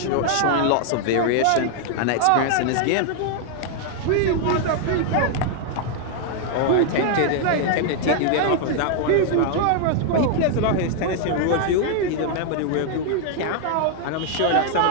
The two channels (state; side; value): different; both; correlation 0.00